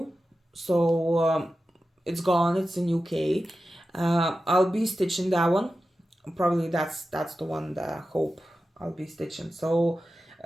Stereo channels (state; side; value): normal; both; correlation 0.93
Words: So it's gone, it's in UK. I'll be stitching that one. Probably that's the one that Hope I'll be stitching. So